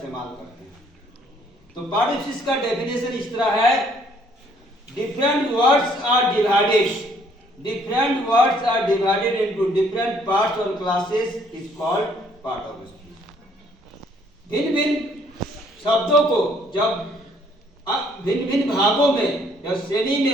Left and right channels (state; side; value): normal; both; correlation 0.63